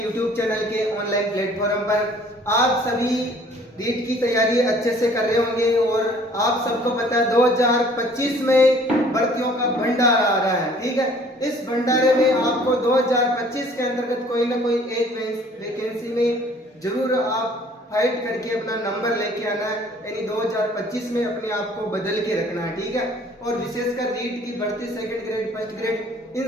चैनल के ऑनलाइन प्लेटफॉर्म पर। आप सभी रीट की तैयारी अच्छे से कर रहे होंगे और आप सबको पता है 2025 में भर्तियों का भंडारा आ रहा है। ठीक है, इस भंडारे में आपको 2025 के अंतर्गत कोई ना कोई एक वैकेंसी में जरूर आप फाइट करके अपना नंबर लेके आना है, यानी 2025 में अपने आप को बदल के रखना है। ठीक है, और विशेषकर रीट की भर्ती, सेकंड ग्रेड, फर्स्ट ग्रेड,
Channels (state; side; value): normal; both; correlation 0.55